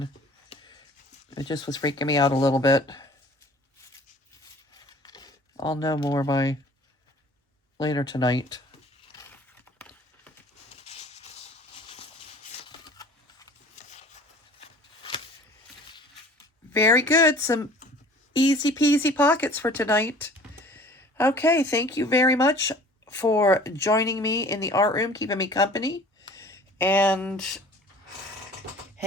It just was freaking me out a little bit. I'll know more by later tonight. Very good. Some easy peasy pockets for tonight. Okay, thank you very much for joining me in the art room, keeping me company, and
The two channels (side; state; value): both; normal; correlation 0.47